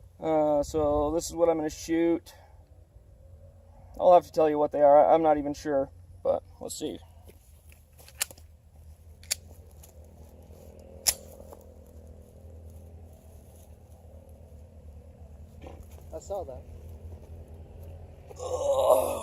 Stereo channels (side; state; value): both; identical; correlation 1.00